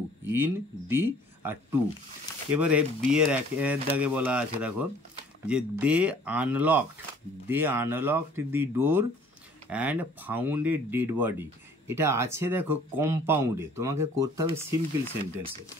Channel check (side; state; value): both; normal; correlation 0.54